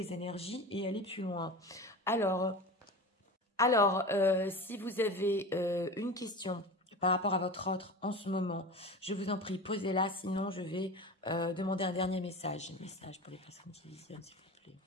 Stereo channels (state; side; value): normal; both; correlation 0.30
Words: énergies et aller plus loin. Alors si vous avez une question par rapport à votre autre en ce moment, je vous en prie, posez-la. Sinon, je vais demander un dernier message. Un message pour les personnes qui visionnent, s'il vous plaît.